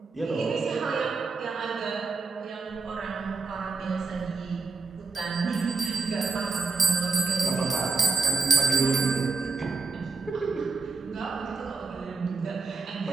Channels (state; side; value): quieter; left; 4.3 dB